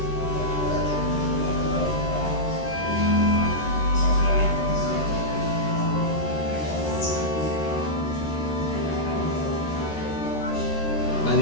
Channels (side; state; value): right; late; 13 ms